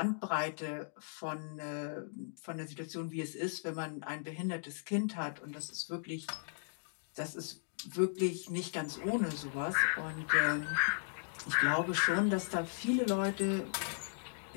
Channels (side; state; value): right; silent; digital silence